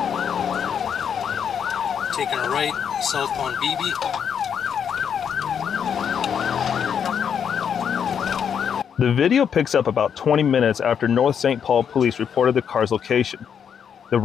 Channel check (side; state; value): right; quieter; 7.8 dB